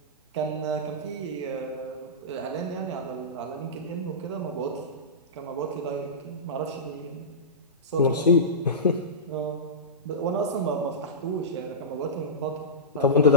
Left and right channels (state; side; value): normal; both; correlation -0.17